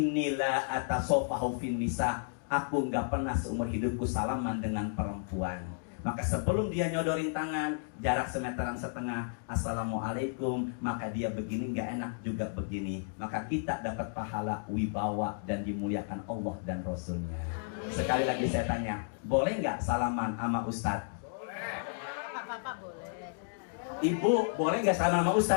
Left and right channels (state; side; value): silent; right; digital silence